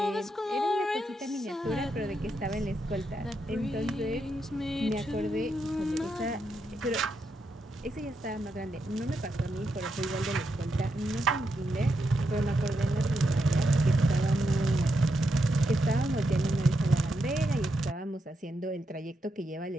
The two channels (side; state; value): both; normal; correlation 0.83